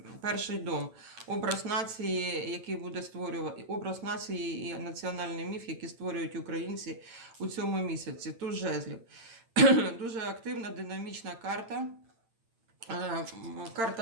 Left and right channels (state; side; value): late; left; 8.9 ms